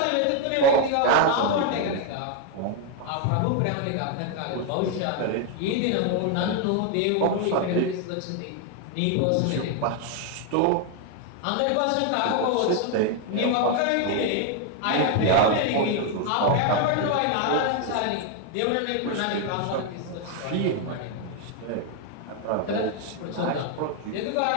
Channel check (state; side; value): different; both; correlation 0.01